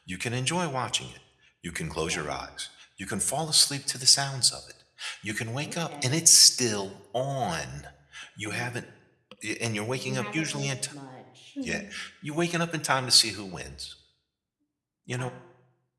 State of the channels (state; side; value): identical; both; correlation 1.00